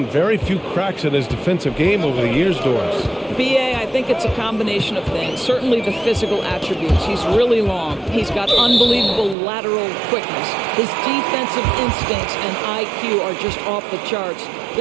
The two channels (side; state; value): left; drops out; at 9.3 s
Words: very few cracks in his defensive game over the years, Doris. BA, I think it's a combination of things. Certainly the physical attributes. He's really long. He's got unbelievable lateral quickness. His defensive instincts and IQ are just off the charts.